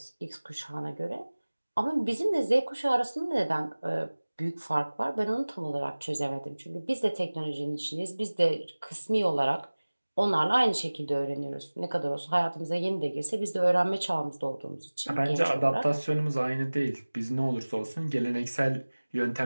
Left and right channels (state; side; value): inverted; both; correlation -1.00